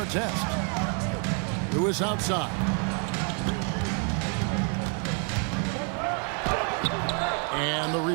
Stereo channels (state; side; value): quieter; left; 39.7 dB